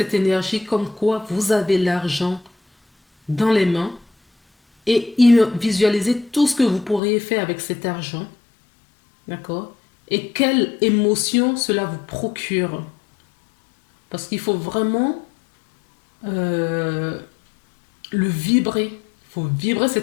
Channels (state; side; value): drops out; right; at 7.0 s